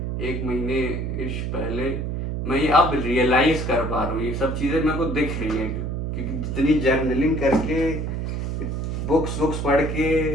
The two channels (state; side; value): noise; right; hum, 2 dB below the sound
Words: एक महीने इश पहले, मैं ये अब रियलाइज कर पा रहा हूँ, ये सब चीज़ें मेरे को दिख रही हैं, क्योंकि जितनी जर्नलिंग करके, बुक्स पढ़